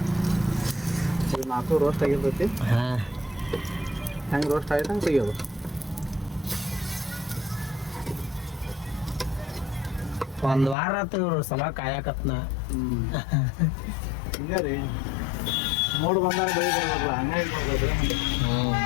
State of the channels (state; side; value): drops out; right; at 10.8 s